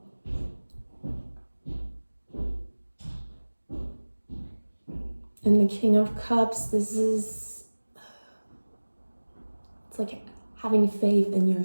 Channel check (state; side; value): inverted; both; correlation -1.00